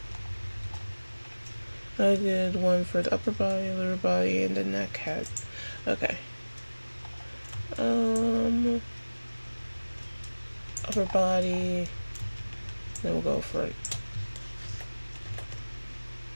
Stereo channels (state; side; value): inverted; both; correlation -1.00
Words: I did 1 for the upper body, lower body, and the neck head. Okay. Upper body. Then we'll go for it.